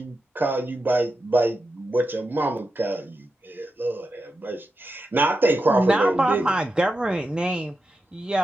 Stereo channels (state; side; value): normal; both; correlation 0.89